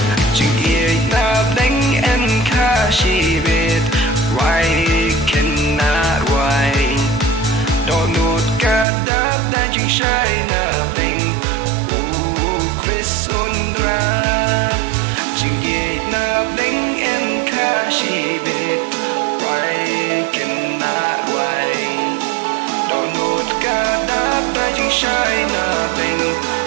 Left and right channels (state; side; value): drops out; left; at 8.8 s